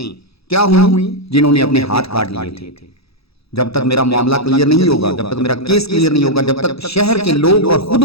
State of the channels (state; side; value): late; right; 0.77 ms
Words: کیا ہوئی جنہوں نے اپنے ہاتھ کاٹ لیے تھے۔ جب تک میرا معاملہ کلیئر نہیں ہوگا، جب تک میرا کیس کلیئر نہیں ہوگا، جب تک شہر کے لوگ اور خود